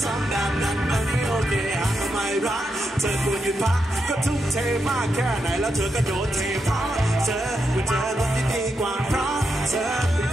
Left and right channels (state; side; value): normal; both; correlation 0.84